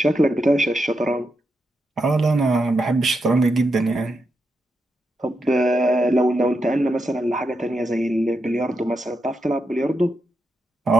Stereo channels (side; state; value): both; normal; correlation 0.85